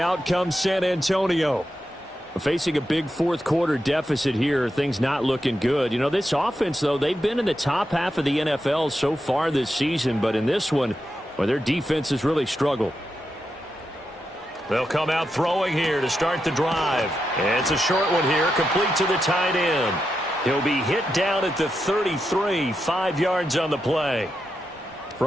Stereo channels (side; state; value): both; normal; correlation 0.87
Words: comes San Antonio. Facing a big 4th quarter deficit here, things not looking good. You know, this offense, though, they've been in the top half of the NFL so far this season, but in this one, well, their defense has really struggled. They'll come out throwing here to start the drive. And it's a short one here, complete to the tight end. He'll be hit down at the 33, 5 yards on the play.